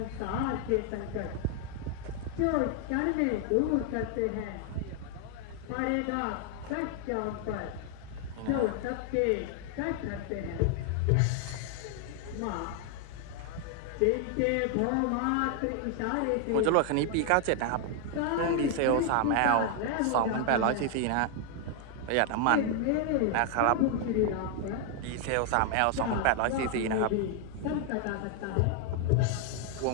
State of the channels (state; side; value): different; both; correlation 0.00